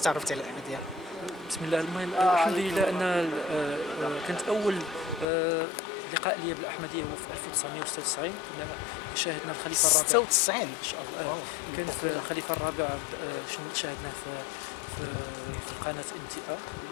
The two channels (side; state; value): right; drops out; at 5.2 s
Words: على الأحمدية؟ بسم الله. المهم الحمد لله أن كانت أول لقاء لي بالأحمدية هو في 1996. كنا شاهدنا الخليفة الرابع 96 إن شاء الله. كان في الخليفة الرابع شاهدناه في قناة NTA